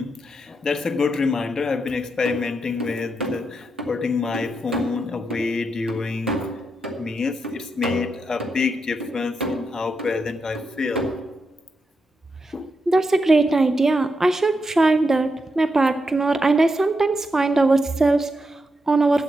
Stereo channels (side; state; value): both; normal; correlation 0.84